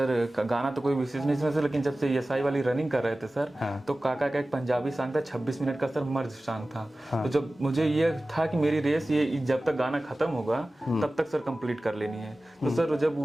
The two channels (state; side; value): normal; both; correlation 0.96